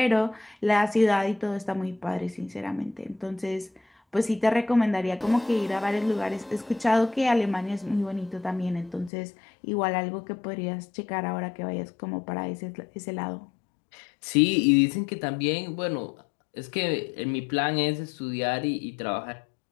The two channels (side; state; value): right; drops out; at 9.1 s